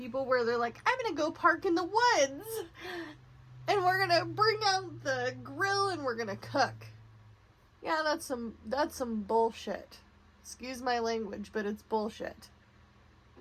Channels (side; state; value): both; identical; correlation 1.00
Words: where they're like, I'm going to go park in the woods and we're going to bring out the grill and we're going to cook. Yeah, that's some bullshit. Excuse my language, but it's bullshit.